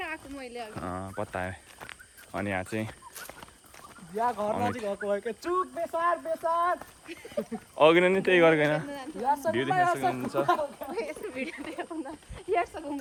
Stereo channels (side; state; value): both; identical; correlation 1.00